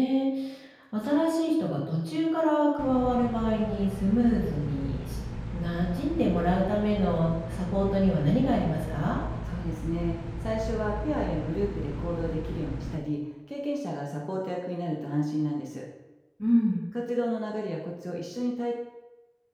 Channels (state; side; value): identical; both; correlation 1.00